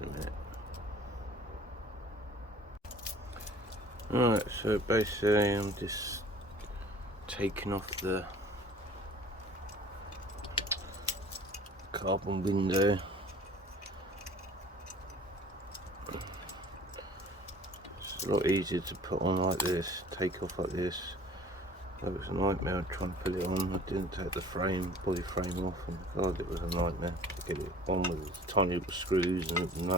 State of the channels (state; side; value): normal; both; correlation 0.49